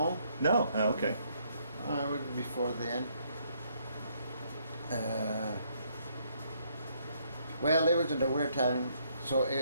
No. Oh, okay. I was before then. Well, it was in the winter time, so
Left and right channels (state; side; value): inverted; both; correlation -0.70